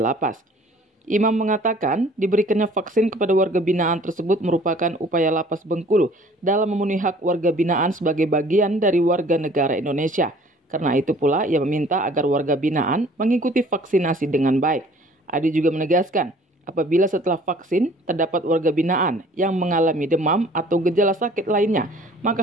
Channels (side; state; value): both; normal; correlation 0.52